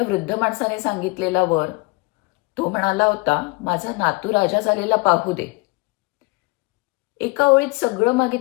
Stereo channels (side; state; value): right; quieter; 25.3 dB